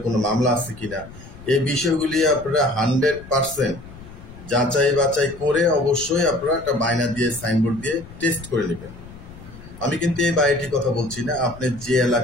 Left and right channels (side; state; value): left; noise; rumble, 17 dB below the sound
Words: কোনো মামলা আছে কিনা, এই বিষয়গুলি আপনারা 100% যাচাই বাছাই করে অবশ্যই আপনারা একটা বায়না দিয়ে, সাইনবোর্ড দিয়ে টেস্ট করে নেবেন। আমি কিন্তু এই বাড়িটির কথা বলছি না, আপনি যে